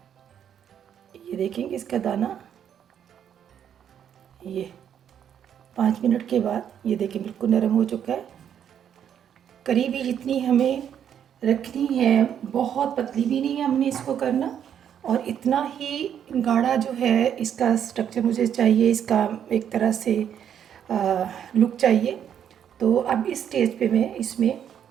ये देखेंगे इसका दाना, ये 5 मिनट के बाद ये देखिए बिल्कुल नरम हो चुका है। करीबी जितनी हमें रखनी है, बहुत पतली भी नहीं है हमने इसको करना, और इतना ही गाढ़ा जो है इसका स्ट्रक्चर मुझे चाहिए, इसका एक तरह से लुक चाहिए। तो अब इस स्टेज पे मैं इसमें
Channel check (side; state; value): left; quieter; 9.1 dB